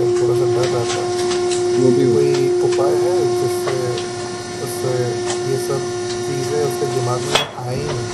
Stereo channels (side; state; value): both; identical; correlation 1.00